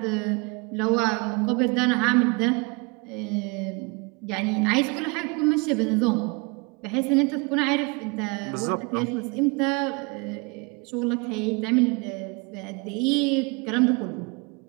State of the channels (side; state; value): left; quieter; 29.6 dB